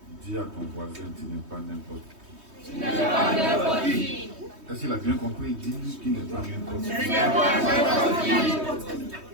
Dis à ton voisin, tu n'es pas n'importe qui. Tu n'es pas n'importe qui. Est-ce qu'il a bien compris? Dis-lui qu'il n'est pas n'importe qui. Tu n'es pas n'importe qui.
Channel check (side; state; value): left; late; 3.2 ms